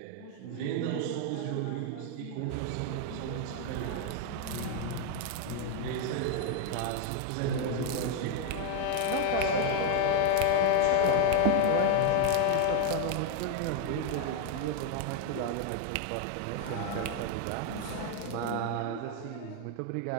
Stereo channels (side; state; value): both; different; correlation -0.01